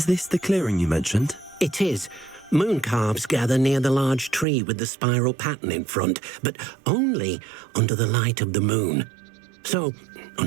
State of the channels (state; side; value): drops out; left; at 4.5 s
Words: this the clearing you mentioned? It is. Moon calves gather near the large tree with the spiral pattern in front, but only under the light of the moon. So,